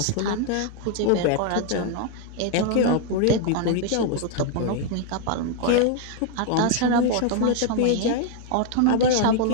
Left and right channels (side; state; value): both; different; correlation 0.00